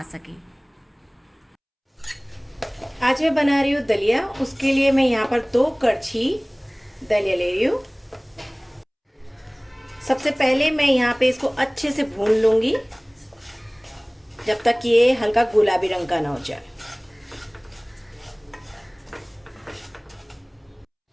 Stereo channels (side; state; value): both; identical; correlation 1.00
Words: सके। आज मैं बना रही हूँ दलिया। उसके लिए मैं यहाँ पर 2 कड़छी दलिया ले रही हूँ। सबसे पहले मैं यहाँ पे इसको अच्छे से भून लूँगी जब तक ये हल्का गुलाबी रंग का ना हो जाए।